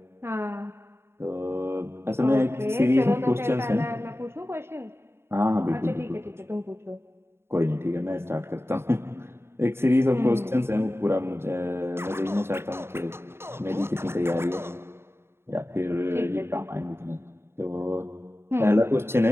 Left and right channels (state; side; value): late; left; 0.12 ms